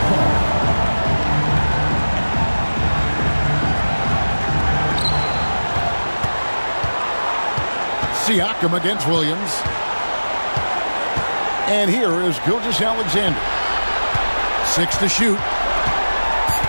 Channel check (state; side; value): inverted; both; correlation -1.00